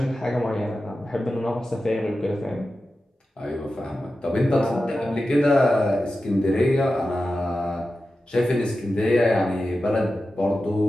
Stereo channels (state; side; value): normal; both; correlation 0.93